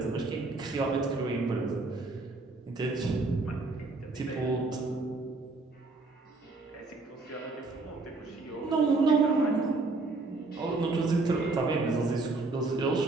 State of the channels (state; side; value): quieter; left; 3.5 dB